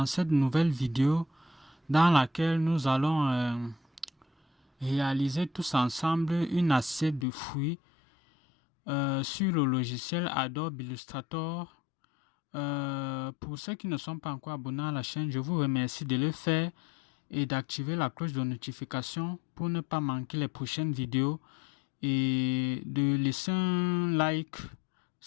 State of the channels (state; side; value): drops out; right; at 7.2 s